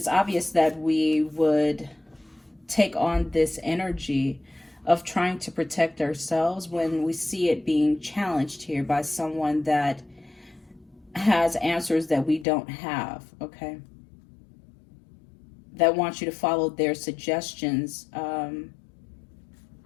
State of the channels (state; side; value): drops out; right; at 12.5 s